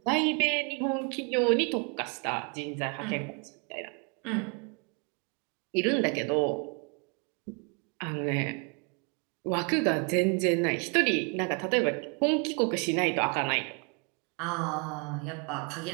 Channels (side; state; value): left; quieter; 35.4 dB